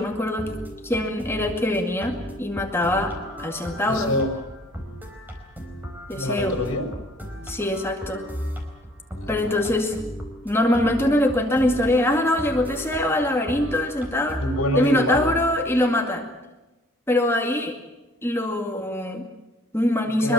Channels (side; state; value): both; normal; correlation 0.58